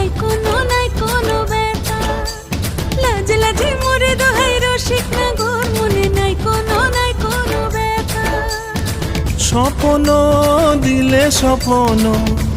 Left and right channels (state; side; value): identical; both; correlation 1.00